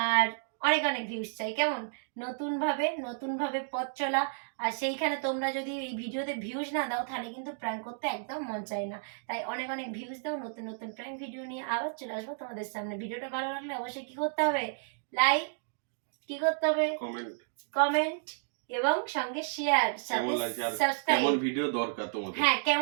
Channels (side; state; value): left; silent; digital silence